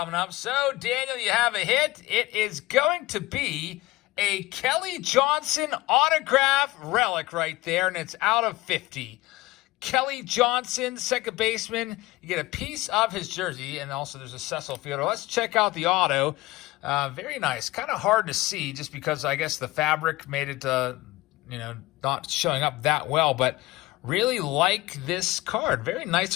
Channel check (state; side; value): quieter; right; 19.2 dB